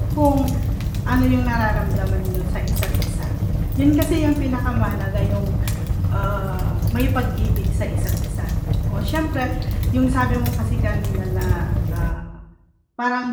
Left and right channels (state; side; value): identical; both; correlation 1.00